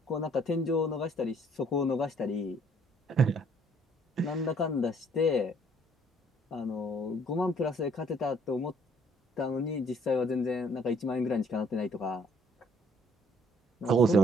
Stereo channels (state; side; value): normal; both; correlation 0.61